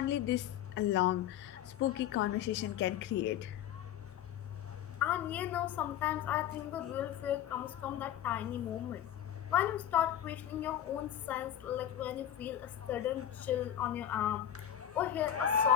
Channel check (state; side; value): quieter; right; 10.8 dB